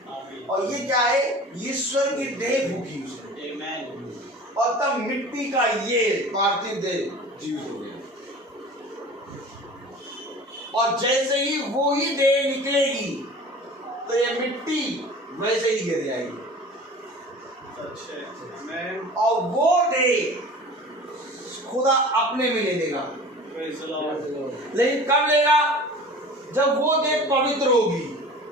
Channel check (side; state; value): both; normal; correlation 0.40